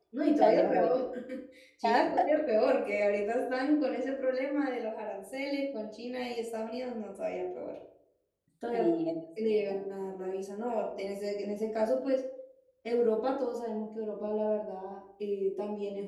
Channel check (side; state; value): both; identical; correlation 1.00